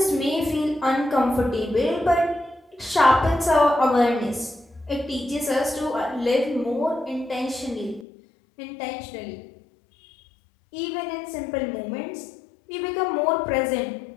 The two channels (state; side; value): drops out; right; at 8.1 s